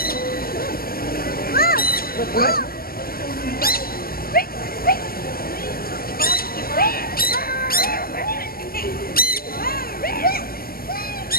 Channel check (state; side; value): late; right; 0.43 ms